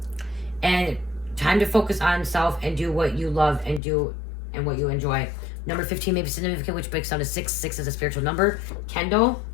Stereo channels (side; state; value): right; drops out; at 3.8 s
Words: And time to focus on self and do what you love and do and what you enjoy. Number 15 may be significant, which breaks down to 6. 6 is a spiritual number. Kendall.